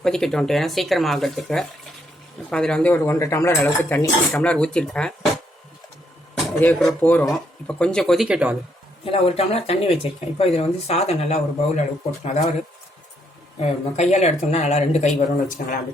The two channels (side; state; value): both; normal; correlation 0.73